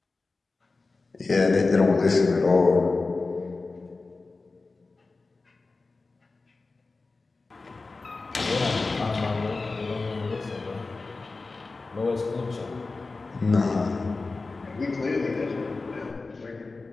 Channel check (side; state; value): right; quieter; 3.7 dB